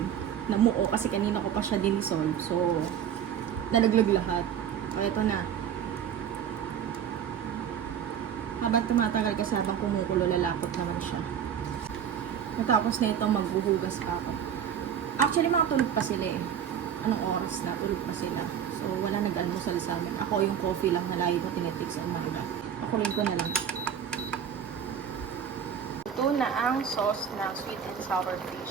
namuo kasi kanina ko pa siya dinissolve. So, nalaglag lahat. So, ito na. Habang tumatagal kasi habang kumukulo, lalapot naman siya. Natapos na ito, maghuhugas pa ako. Actually, mga tulog pa sila eh. Anong oras na? Tulog pa sila. So, wala nag-almusal sa amin. Ako yung coffee lang na lagi ko tinitik sa umaga. Ako rin ko na lang. Ito na ang sauce ng sweet and sour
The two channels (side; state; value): left; quieter; 8.6 dB